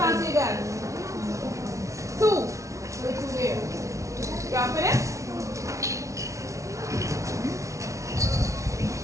you got? 2. Put 2 there. You are finished?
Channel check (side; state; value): left; late; 0.15 ms